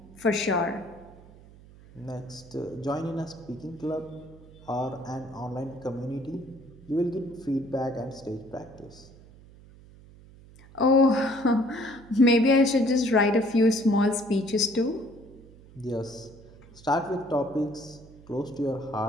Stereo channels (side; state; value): right; noise; hum, 22 dB below the sound